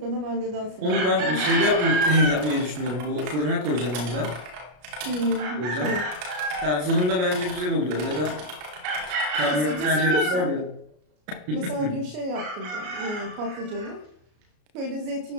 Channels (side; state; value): left; late; 33 ms